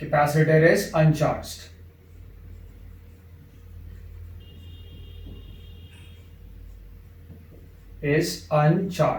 capacitor is uncharged, is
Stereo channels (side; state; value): both; identical; correlation 1.00